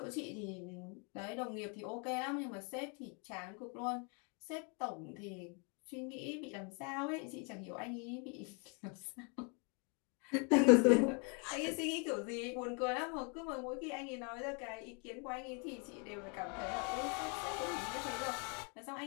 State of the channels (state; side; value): quieter; right; 35.8 dB